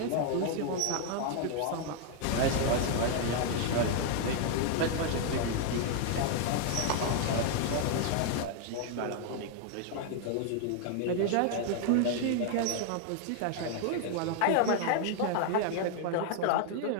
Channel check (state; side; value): different; both; correlation 0.00